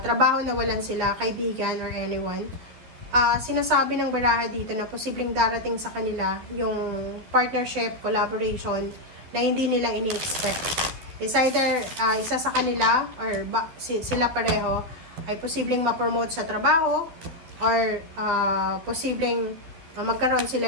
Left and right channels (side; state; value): left; late; 12 ms